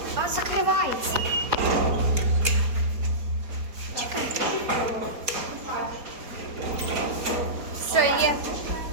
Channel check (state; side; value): late; left; 4.5 ms